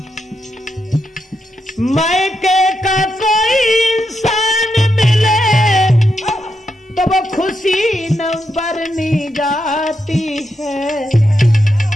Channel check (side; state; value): both; normal; correlation 0.83